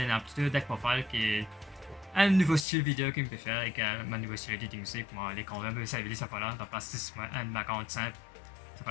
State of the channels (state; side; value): drops out; right; at 2.7 s